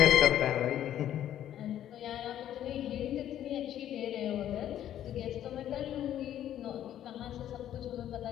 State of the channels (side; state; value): right; quieter; 11.3 dB